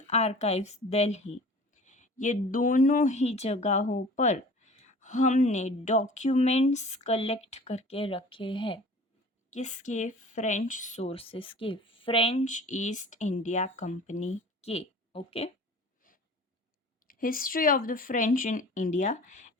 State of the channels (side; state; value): both; normal; correlation 0.43